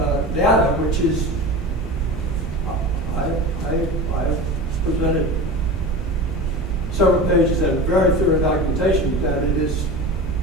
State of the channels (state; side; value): normal; both; correlation 0.31